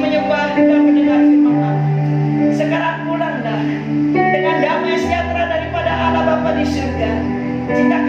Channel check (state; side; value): identical; both; correlation 1.00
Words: dan mendengar firman Allah. Sekarang pulanglah dengan damai sejahtera daripada Allah Bapa di surga, cinta